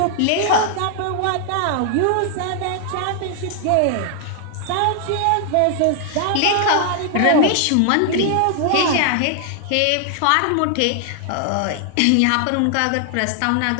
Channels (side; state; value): both; different; correlation 0.00